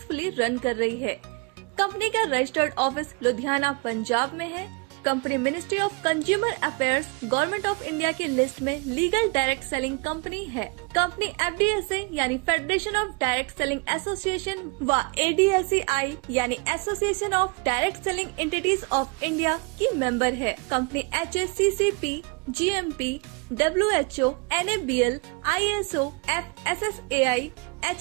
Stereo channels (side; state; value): left; quieter; 30.4 dB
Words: रन कर रही है। कंपनी का रजिस्टर्ड ऑफिस लुधियाना, पंजाब में है। Company ministry of consumer affairs, government of India की लिस्ट में लीगल डायरेक्ट सेलिंग कंपनी है। कंपनी FDSA यानी federation of direct selling association व ADSEI यानी association of direct selling entities of India की मेंबर है। Company HACCP, GMP, WHO, NABL, ISO, FSSAI,